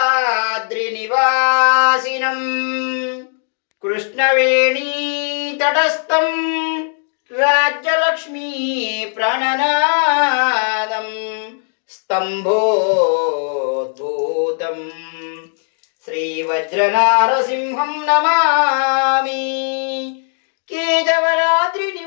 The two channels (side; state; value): right; silent; 55 dB below the other